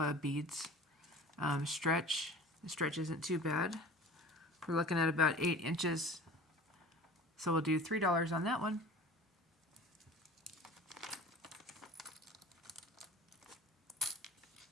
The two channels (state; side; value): normal; both; correlation 0.40